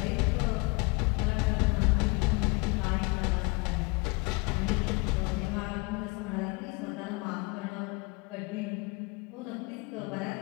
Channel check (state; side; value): quieter; right; 28.5 dB